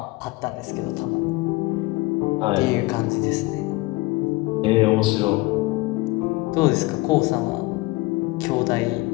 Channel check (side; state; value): right; quieter; 22.0 dB